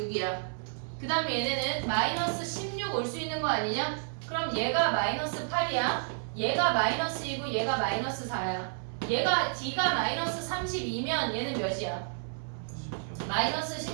그 다음에 얘네는 마이너스 16 올 수 있는 거 아니냐? 그럼 얘가 마이너스 8이야. 얘가 마이너스 2고 얘가 마이너스 4야. 얘가 D가 마이너스 32면 얘는 몇이야? 마이너스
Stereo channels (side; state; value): left; silent; 57 dB below the other